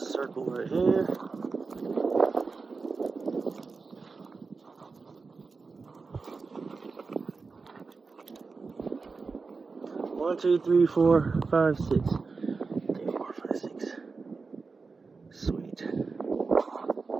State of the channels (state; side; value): quieter; left; 4.4 dB